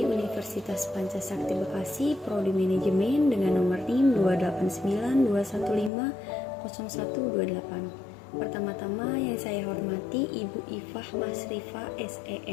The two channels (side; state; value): right; drops out; at 5.9 s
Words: Universitas Pancasakti Bekasi, Prodi Manajemen dengan nomor NIM 28921500128. Pertama-tama yang saya hormati Ibu Ifah Masrifa